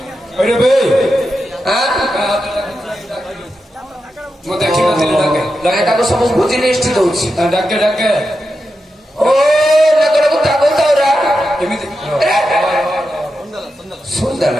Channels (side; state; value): both; normal; correlation 0.88